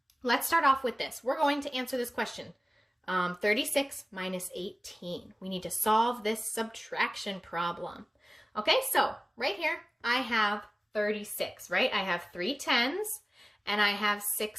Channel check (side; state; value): both; normal; correlation 0.97